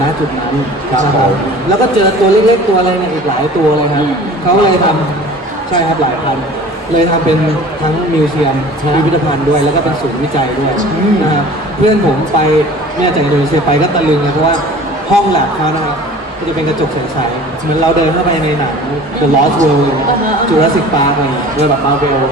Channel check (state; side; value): normal; both; correlation 0.44